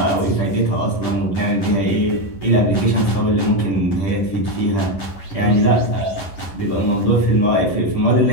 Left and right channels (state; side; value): late; right; 10 ms